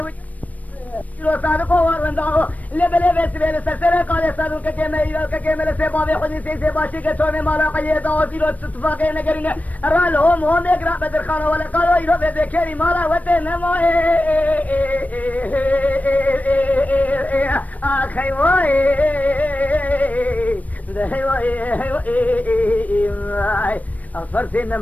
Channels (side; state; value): right; late; 0.072 ms